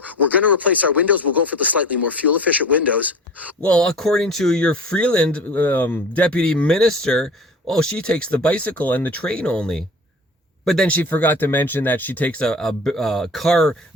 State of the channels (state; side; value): normal; both; correlation 0.39